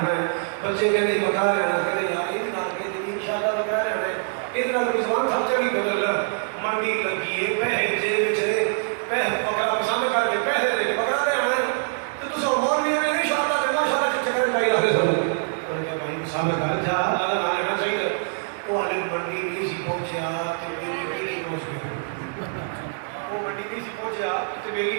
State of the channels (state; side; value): silent; left; 56 dB below the other